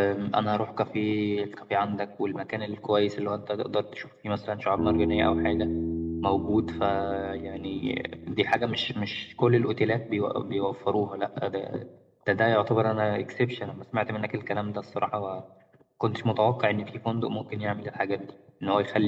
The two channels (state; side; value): identical; both; correlation 1.00